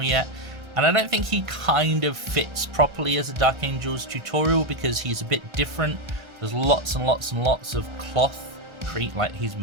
yet, and I don't think he kind of fits properly as a Dark Angels tutorial because he's a bit different. There's lots and lots and lots of cloth. Like, he's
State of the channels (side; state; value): left; late; 1.4 ms